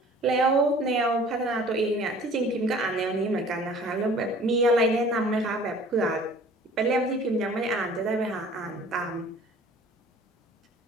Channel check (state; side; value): normal; both; correlation 0.49